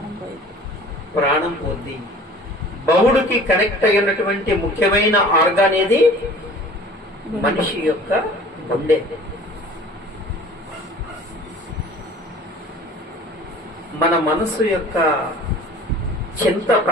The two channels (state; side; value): normal; both; correlation 0.45